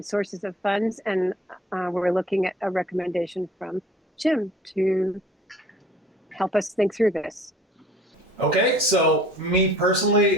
sources of funds, and we're looking at a recommendation from Jim to help us think through this. Okay, so me personally,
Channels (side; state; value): both; normal; correlation 0.50